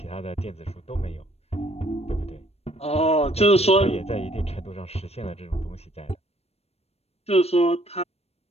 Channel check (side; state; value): right; late; 0.30 ms